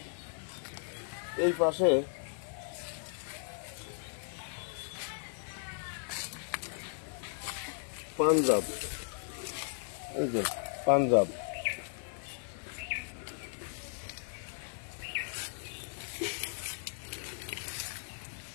এই পাশে পাঞ্জাব, এই যে পাঞ্জাব।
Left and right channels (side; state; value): right; silent; digital silence